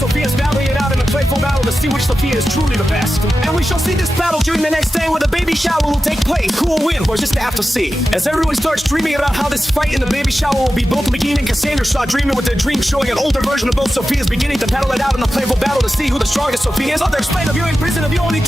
battling it out in a playful battle to see which Sophia is truly the best. And we shall see this battle during the next day, where the baby shower will take place. Who will win? We're just have to see. As everyone starts dreaming about how this fight in the baby shower will be, both Megan and Cassandra start dreaming with their dreams, showing an older version of both Sophias beginning to battle it out in a playful battle to see who the strongest Sophia is. Others explain of you in prison of you only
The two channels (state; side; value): normal; both; correlation 0.93